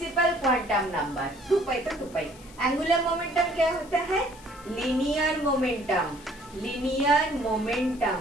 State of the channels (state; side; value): noise; left; hiss, 22 dB below the sound